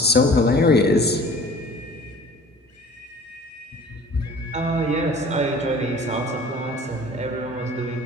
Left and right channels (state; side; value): normal; both; correlation 0.47